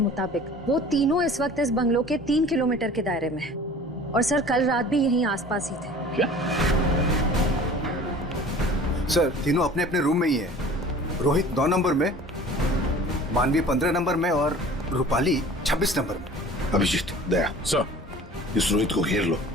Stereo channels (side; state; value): both; normal; correlation 0.45